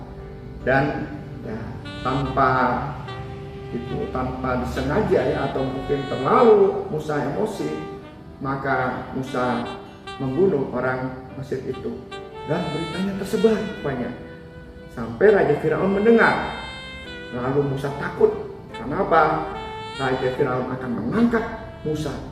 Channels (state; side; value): identical; both; correlation 1.00